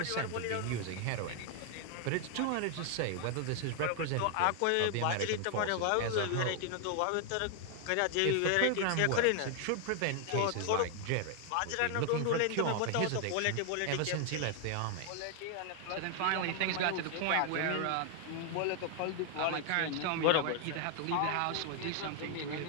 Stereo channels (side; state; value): both; different; correlation 0.00